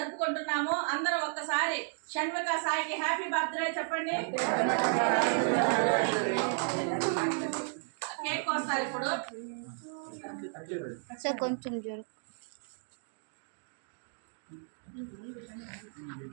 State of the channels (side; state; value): left; silent; 56 dB below the other